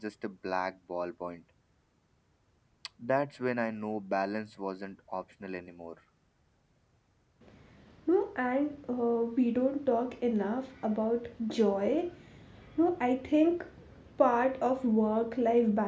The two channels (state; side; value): identical; both; correlation 1.00